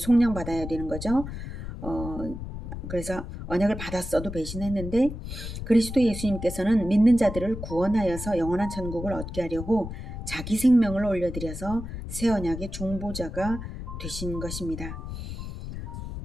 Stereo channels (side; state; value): left; noise; rumble, 8 dB below the sound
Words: 되는 거죠. 그래서 언약을 받았어도 배신했는데 그리스도 예수님께서는 믿는 자들을 구원하여서 영원한 천국을 얻게 하려고 자기 생명을 올려드려서 새 언약의 중보자가 되신 것입니다.